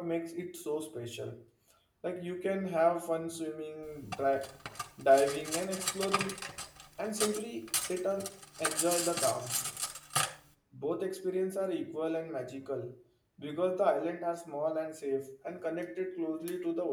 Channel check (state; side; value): identical; both; correlation 1.00